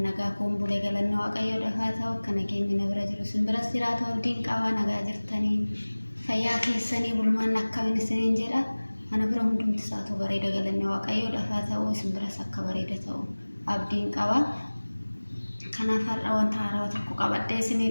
nagaa kun bulee galannoo waaqayyoo dhafaa ta'u akka nageenyi na bira jiru simbiras jiraatu abdiin qabaa nagaa jirtanii fayyaa keessanii bulmaan akkamiin isiniin jedha ana bira hundumti isaatu bareeda galannoo waaqayyoo dhafaa ta'u simbiras akka bareeda ta'u abdiin qabaa kanaaf har'a wanta haaraa tokko qabadhee isinii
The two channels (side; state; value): both; inverted; correlation -1.00